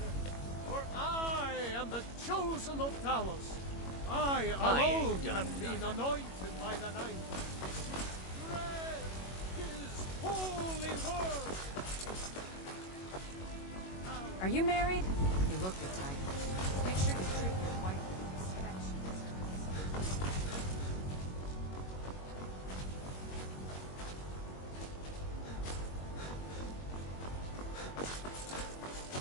For I am the chosen of Talos. I alone have been anointed by the ninth. Spread his holy word. Are you married? You look the type. Make sure you treat your wife with respect.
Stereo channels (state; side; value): late; right; 21 ms